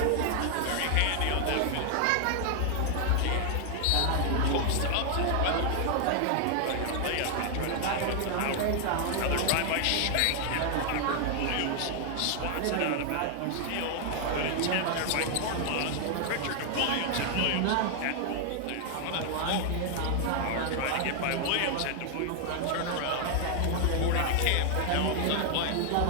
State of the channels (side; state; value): both; different; correlation 0.00